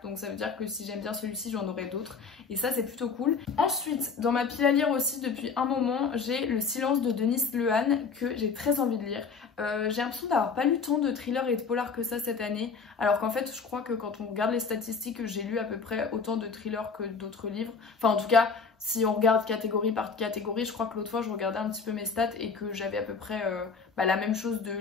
Donc ça veut dire que si j'aime bien celui-ci j'en aurai d'autres et ça c'est plutôt cool. Ensuite, dans ma pile à lire aussi depuis un moment, j'ai Le Silence de Denis Lehane que j'ai très envie de lire. J'ai l'impression d'avoir pas lu tant de thrillers et de polars que ça cette année, alors qu'en fait je crois que quand on regarde les statistiques j'ai lu à peu près autant de thrillers que d'autres livres. Enfin en tout cas si on regarde catégorie par catégorie, je crois que l'autre fois je regardais un petit peu mes stats et que j'avais à peu près la même chose de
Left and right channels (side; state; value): right; quieter; 5.2 dB